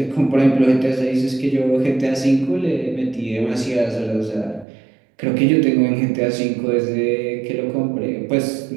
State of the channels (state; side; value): drops out; left; at 4.7 s